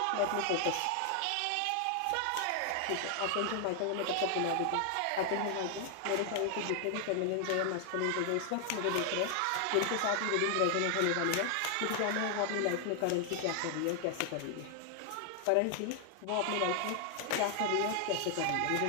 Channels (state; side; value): different; both; correlation 0.00